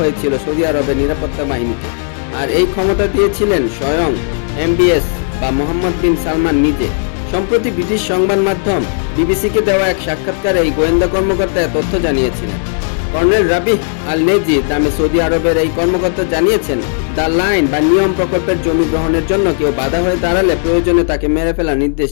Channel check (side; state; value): right; silent; digital silence